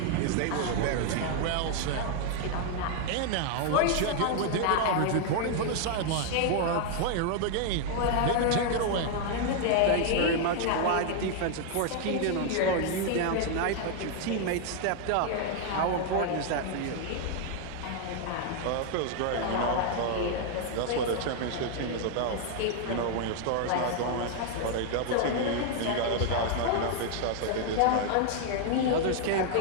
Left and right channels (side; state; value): both; different; correlation 0.00